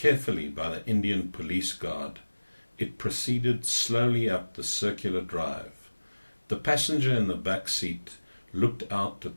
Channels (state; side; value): inverted; both; correlation -1.00